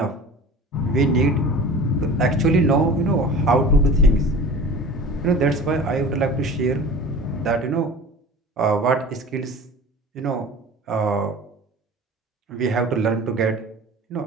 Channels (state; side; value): normal; both; correlation 0.39